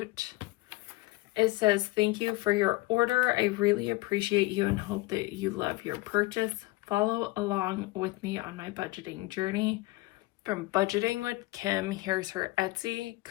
It says, thank you for your order. I really appreciate you and hope that you love your purchase. Follow along with me on my budgeting journey. From Budgeting with Kim, here's her Etsy,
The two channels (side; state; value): right; quieter; 20.9 dB